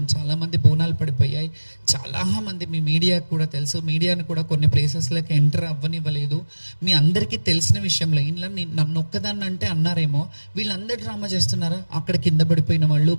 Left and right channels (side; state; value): both; inverted; correlation -1.00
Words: చాలామంది బోనాలు పడిపోయాయి. చాలామంది మీ మీడియాకు కూడా తెలుసు, మీడియాను కూడా కొన్ని ప్లేసెస్లోకి ఎంటర్ అవ్వనివ్వలేదు. మీ అందరికీ తెలిసిన విషయంలో ఇంట్లో నన్ను ఒక్కదాన్ని అంటే అన్నారేమో, వీళ్ళందరూ డ్రామా చేస్తున్నారా, అక్కడ కింద పడిపోయిన వాళ్ళు,